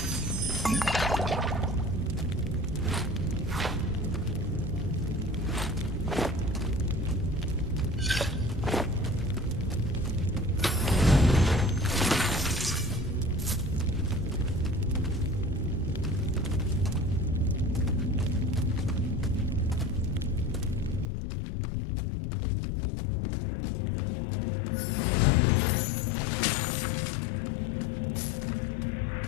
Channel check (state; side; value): drops out; right; at 21.1 s